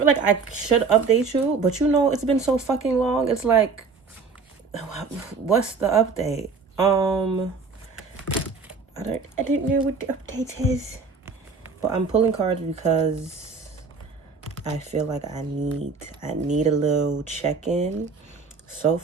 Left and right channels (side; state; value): left; quieter; 4.8 dB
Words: like I should update you, but it's been so fucking long. It's like, what's the update? I didn't know what the update is. But I'm pulling cards because I feel like I need a little check-in. So